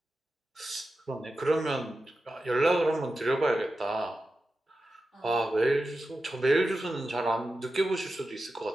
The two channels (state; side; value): normal; both; correlation 0.92